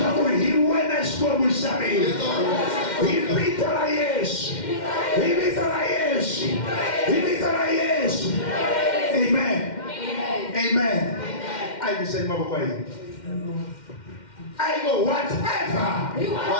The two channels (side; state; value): right; late; 2.1 ms